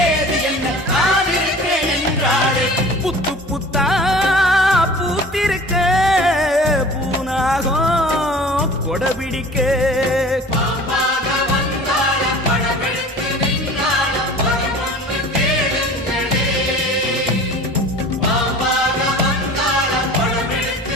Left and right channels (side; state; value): both; normal; correlation 0.43